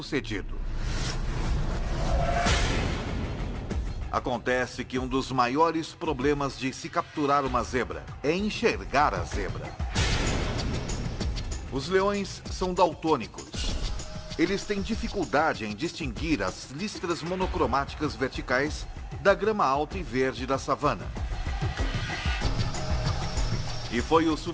Acontece que um dos maiores problemas de se capturar uma zebra é enxergar a zebra. Os leões são daltônicos. Eles têm dificuldade em distinguir as listras monocromáticas verticais da grama alta e verde da savana. E foi o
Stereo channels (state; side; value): identical; both; correlation 1.00